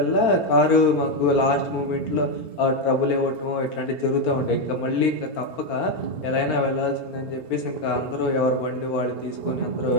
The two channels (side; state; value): right; late; 4.4 ms